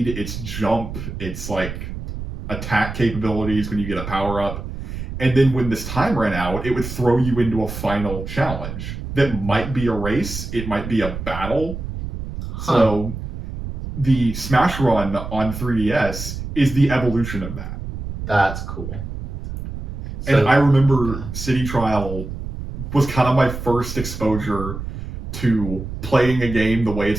its jump, its like attack capabilities when you get a power-up. And then when this time ran out, it would throw you into a final challenge that might be a race, it might be a battle. So the Smash Run on 3DS is the evolution of that. That's cool. And I remember City Trial was kind of my first exposure to playing a game the way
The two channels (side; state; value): right; noise; rumble, 8 dB below the sound